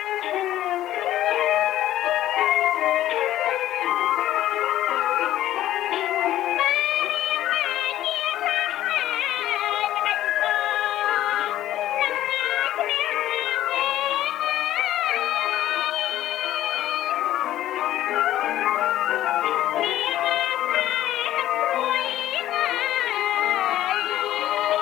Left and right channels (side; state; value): right; quieter; 13.5 dB